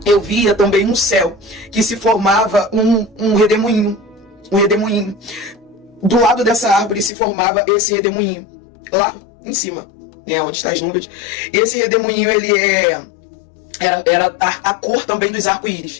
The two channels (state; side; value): drops out; right; at 7.1 s